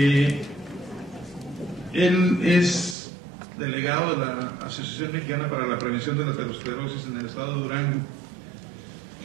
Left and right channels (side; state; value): left; drops out; at 3.0 s